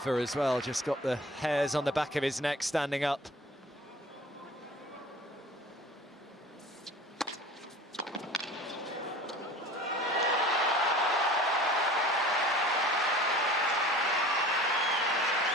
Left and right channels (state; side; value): normal; both; correlation 0.43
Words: as well just got the hairs on the back of his neck standing up.